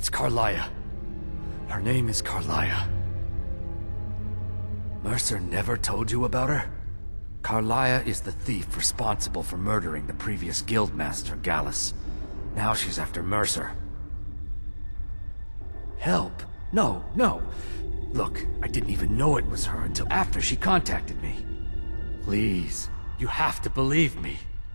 Carlia. Her name is Carlia. Mercer never told you about her? Carlia is the thief responsible for murdering the previous guildmaster, Gallus. Now she's after Mercer. Help? No. Look, I didn't even know it was her until after she contacted me. Please, you have to believe me.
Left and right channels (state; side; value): inverted; both; correlation -1.00